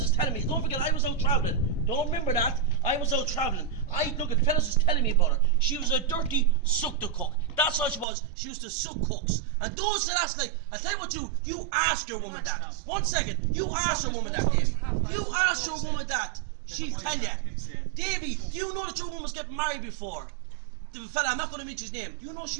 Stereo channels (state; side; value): drops out; left; at 8.1 s